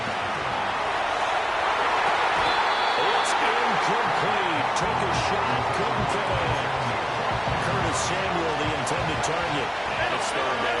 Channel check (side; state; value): both; identical; correlation 1.00